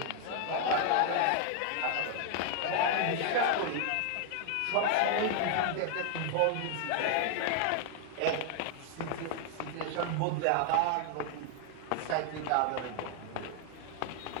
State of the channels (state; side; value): different; both; correlation 0.00